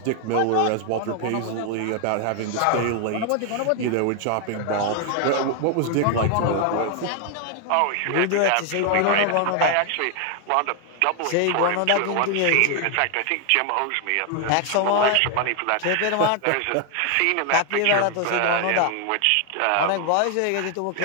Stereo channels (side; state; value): both; different; correlation 0.00